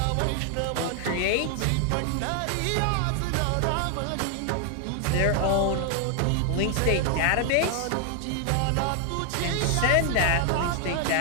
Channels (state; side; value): different; both; correlation 0.00